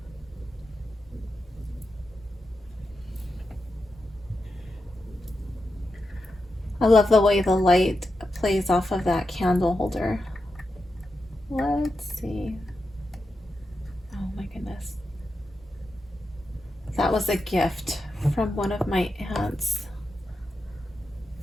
I love the way the light plays off of that candle holder. Let's see. Oh my goodness. That was a gift from one of my aunts.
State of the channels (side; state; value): both; normal; correlation 0.88